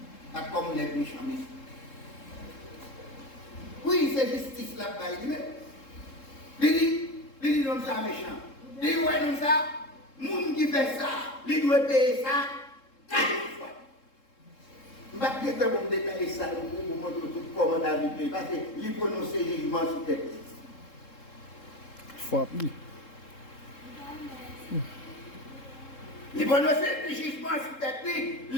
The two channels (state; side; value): late; right; 3.7 ms